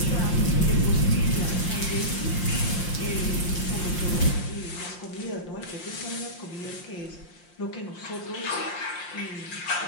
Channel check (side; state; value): right; late; 5.7 ms